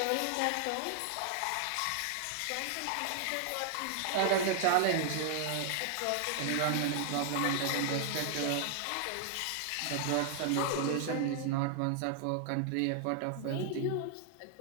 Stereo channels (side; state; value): both; different; correlation 0.00